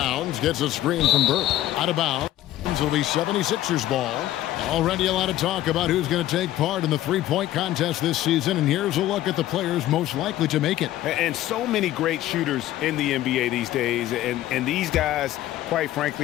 gets a screen from Burke. Out of bounds. It'll be 76ers ball. Already a lot of talk about who's going to take part in the 3-point contest this season, and here's a look at the players most likely to make it. And so many great shooters in the NBA these days, and these guys, quite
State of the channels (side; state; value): right; quieter; 14.1 dB